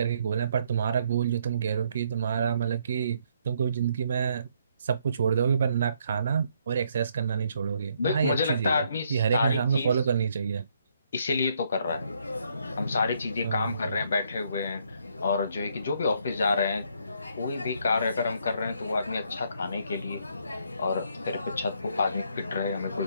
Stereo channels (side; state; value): both; inverted; correlation -0.71